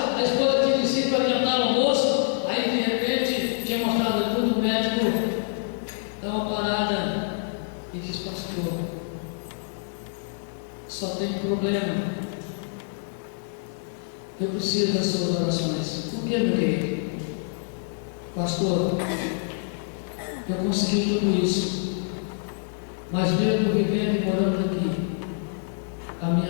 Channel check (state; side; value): silent; right; 61 dB below the other